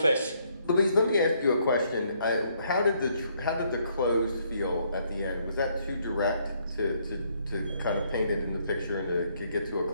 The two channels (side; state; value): both; inverted; correlation -0.70